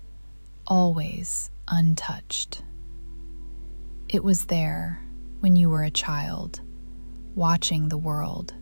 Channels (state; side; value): inverted; both; correlation -1.00